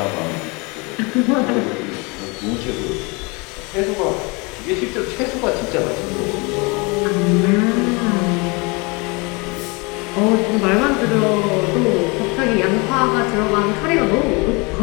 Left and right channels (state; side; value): quieter; right; 28.4 dB